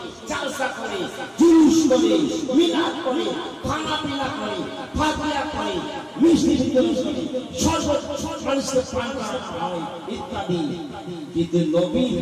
জালসা করে, জুলুস করে, মিলাদ করে, খানা পিনা করে, ফাতিহা করে, মিষ্টি বিতরণ করে, শরবত মানুষকে পান করানো হয় ইত্যাদি। কিন্তু নবীর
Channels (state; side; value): identical; both; correlation 1.00